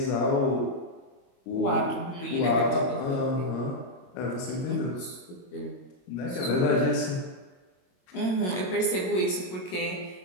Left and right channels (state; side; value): late; right; 22 ms